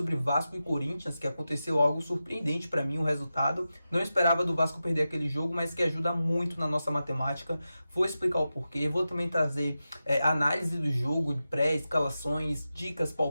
Vasco e Corinthians, que aconteceu algo surpreendente para mim, o resultado. Não esperava do Vasco perder aquele jogo, mas que ajuda muito na nossa matemática. Vou explicar o porquê, vou também trazer análise do jogo, de pré-escalações, dicas,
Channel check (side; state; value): both; inverted; correlation -0.92